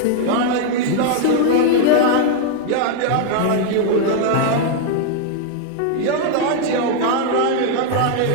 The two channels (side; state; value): both; different; correlation 0.00